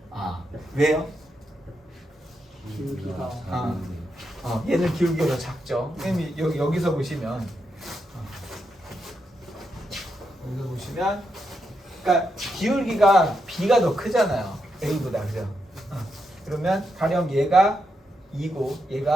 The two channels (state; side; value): normal; both; correlation 0.83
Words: 왜요? 기울기가 얘는 기울기가 더 작죠. 선생님이 여기서 보시면 그러니까 기울기가 B가 더 크잖아요. A보다 그죠? 그러면 가령 얘가 2고